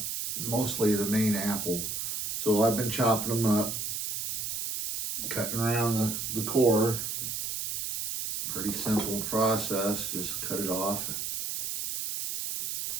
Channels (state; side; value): noise; right; hiss, 3 dB below the sound